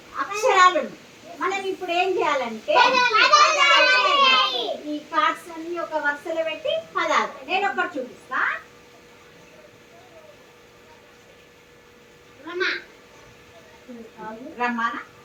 అక్షరాలు. మనం ఇప్పుడు ఏం చేయాలంటే ఈ కార్డ్స్ అన్ని ఒక వరుసలో పెట్టి పదాలు. నేను ఒకటి చూపిస్తా. రమానా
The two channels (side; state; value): both; identical; correlation 1.00